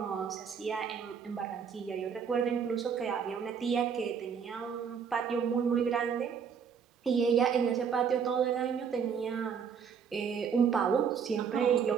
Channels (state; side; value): quieter; left; 6.8 dB